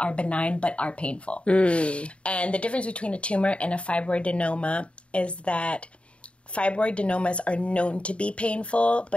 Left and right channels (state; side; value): late; right; 0.060 ms